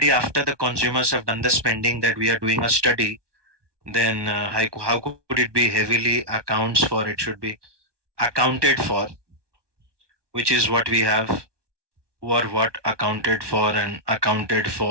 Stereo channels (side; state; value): left; late; 1.2 ms